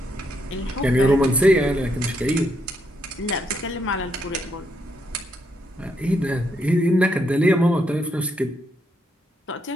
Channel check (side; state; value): both; normal; correlation 0.77